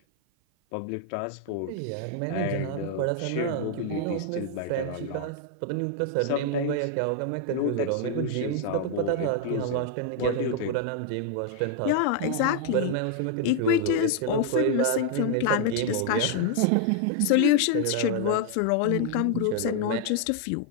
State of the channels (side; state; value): both; different; correlation 0.00